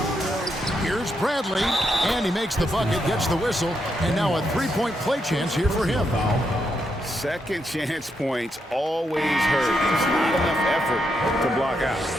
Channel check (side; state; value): both; normal; correlation 0.81